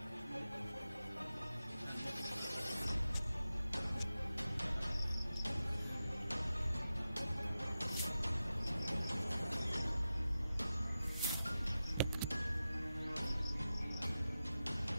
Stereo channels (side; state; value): both; inverted; correlation -0.93